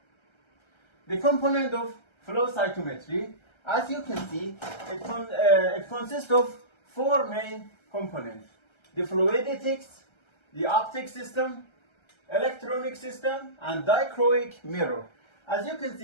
The component of flow cytometry, as you can see, it consists of four main components: the fluidics, the optic system, electronic system, and dichroic mirror. As you can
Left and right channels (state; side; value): late; right; 1.3 ms